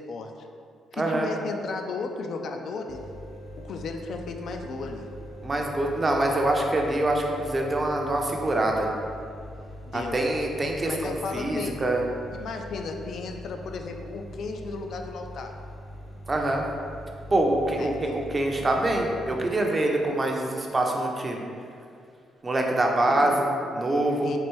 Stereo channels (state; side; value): normal; both; correlation 0.83